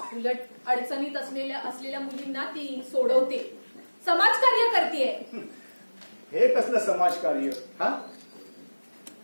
उलट अडचणीत असलेल्या मुलींना ती सोडवते, समाजकार्य करते. हे कसलं समाजकार्य? हा,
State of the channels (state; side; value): inverted; both; correlation -1.00